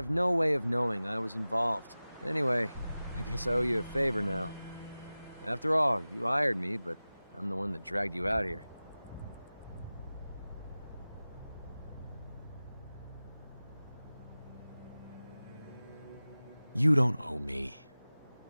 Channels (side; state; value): both; inverted; correlation -0.97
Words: no way of knowing I was involved. Anyway, I guess I owe you a favor now. After all, you hired me, but I'm the one that dragged you out here. You don't owe me.